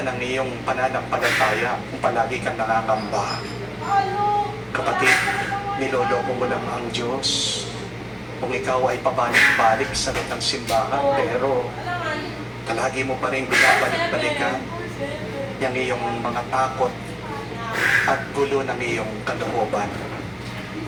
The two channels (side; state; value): both; identical; correlation 1.00